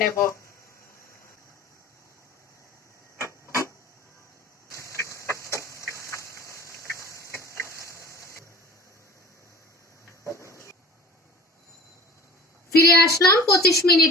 নেব। ফিরে আসলাম 25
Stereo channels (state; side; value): normal; both; correlation 0.42